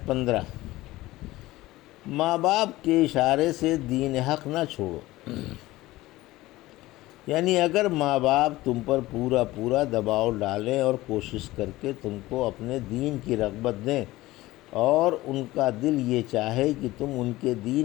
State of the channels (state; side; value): quieter; right; 18.0 dB